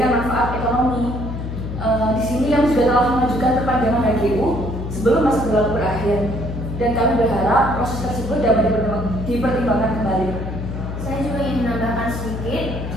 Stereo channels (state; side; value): noise; left; hum, 6 dB below the sound